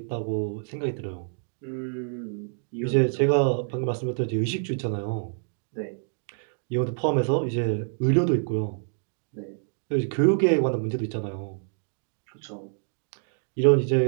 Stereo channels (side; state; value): left; silent; digital silence